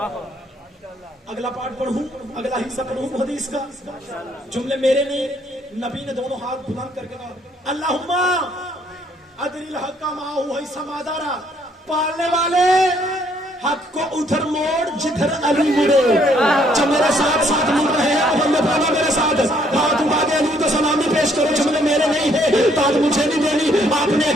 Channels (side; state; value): both; normal; correlation 0.67